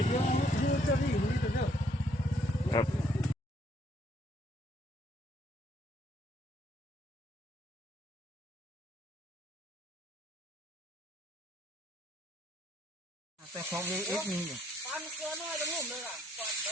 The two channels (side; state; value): both; normal; correlation 0.67